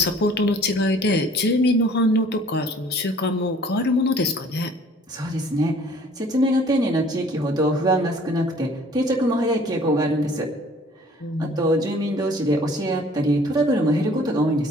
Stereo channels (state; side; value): normal; both; correlation 0.53